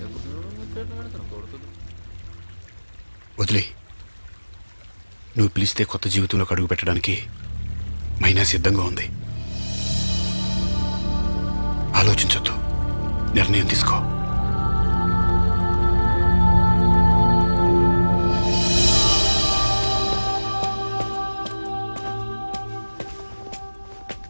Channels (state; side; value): inverted; both; correlation -1.00